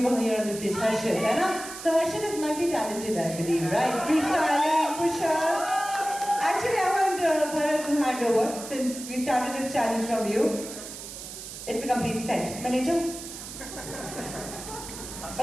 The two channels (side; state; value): right; noise; hiss, 11 dB below the sound